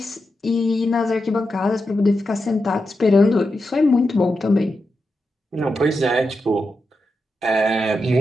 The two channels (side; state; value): both; normal; correlation 0.88